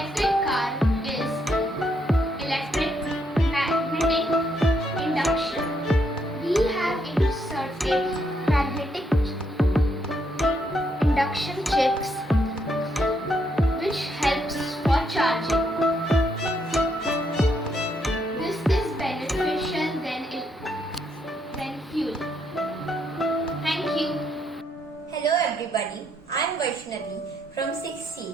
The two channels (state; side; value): normal; both; correlation 0.75